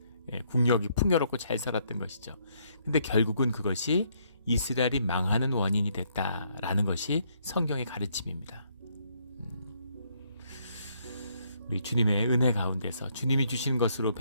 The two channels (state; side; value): inverted; both; correlation -0.71